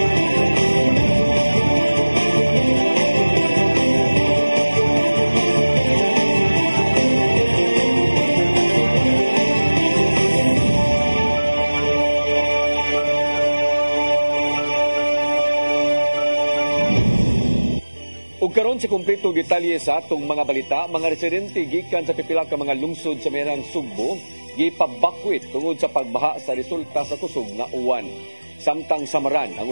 Ug karon sa kumpleto detalye sa atong mga balita, mga residente gikan sa pipila ka mga lungsod sa merang Sugbo gipabakwit tungod sa pagbaha sa resulta sa kusog nga uwan. Samtang Samaran ang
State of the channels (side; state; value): both; inverted; correlation -1.00